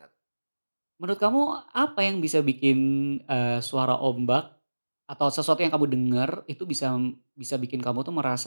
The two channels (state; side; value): inverted; both; correlation -1.00